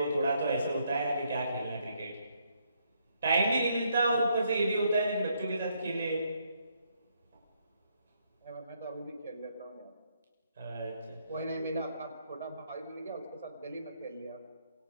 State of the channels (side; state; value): both; inverted; correlation -0.74